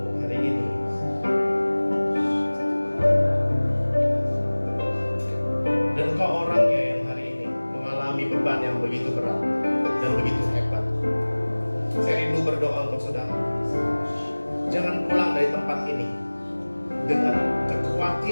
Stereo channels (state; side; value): inverted; both; correlation -1.00